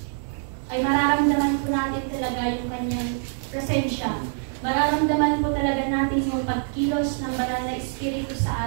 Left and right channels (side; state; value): left; silent; 59 dB below the other